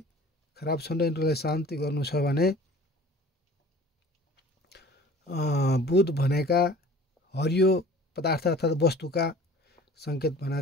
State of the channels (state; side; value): normal; both; correlation 0.46